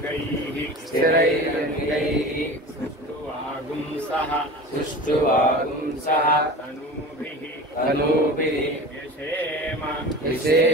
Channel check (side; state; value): both; normal; correlation 0.35